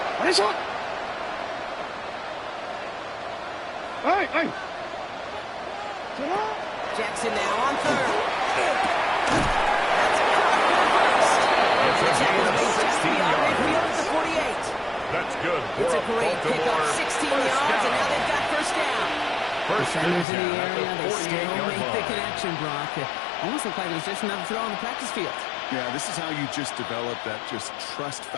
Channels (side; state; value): right; drops out; at 20.2 s